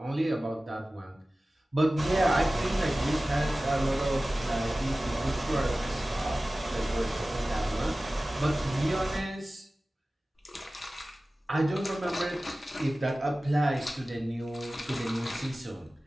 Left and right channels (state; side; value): normal; both; correlation 0.96